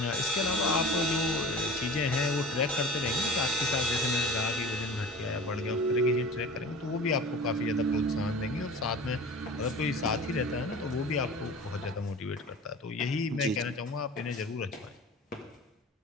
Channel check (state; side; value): normal; both; correlation 0.38